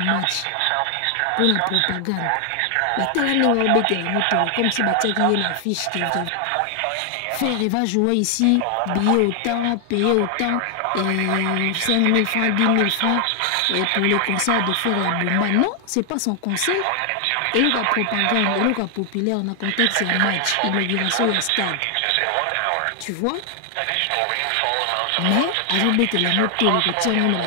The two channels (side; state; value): both; different; correlation 0.00